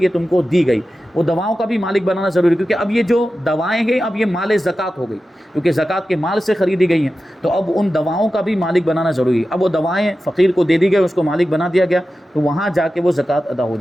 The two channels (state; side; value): normal; both; correlation 0.93